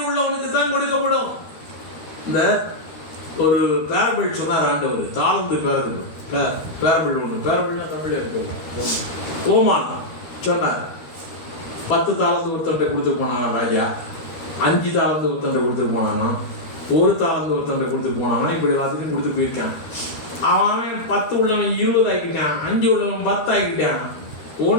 உள்ளவனுக்கு தான் கொடுக்கப்படும். இந்த ஒரு பேரபிள் சொன்னார் ஆண்டவர், தாழ்ந்து பேரபிள் ஒன்று. பேரபிள்னா தமிழ்ல இருக்கு. ஓமானம் சொன்னார். 10 தாளந்து ஒருத்தன்ட்ட கொடுத்துட்டு போனானா ராஜா, 5 தாளந்து ஒருத்தன்ட்ட கொடுத்துட்டு போனானா, 1 தாளந்து ஒருத்தன்ட்ட கொடுத்துட்டு போனானா, இப்படி எல்லாத்துக்கும் கொடுத்து போயிருக்கான். அவன் 10 உள்ளவன் 20 ஆக்கிட்டான், 5 உள்ளவன் 10 ஆக்கிட்டான்.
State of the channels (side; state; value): right; late; 13 ms